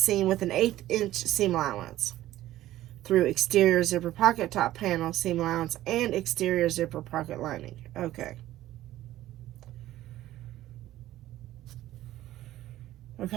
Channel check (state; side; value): quieter; left; 14.5 dB